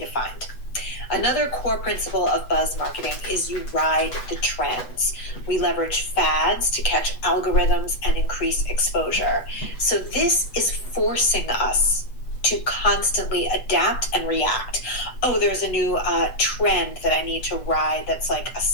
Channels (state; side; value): late; right; 8.0 ms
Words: to find. Another core principle of buzz marketing is you ride the trends. We leverage fads to catch algorithms and increase exposure. So this is forcing us to constantly adapt and react. Oh, there's a new trend that I need to ride that's like